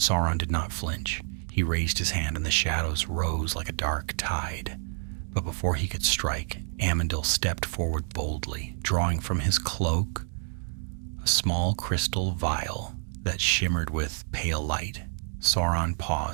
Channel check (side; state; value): left; silent; 59 dB below the other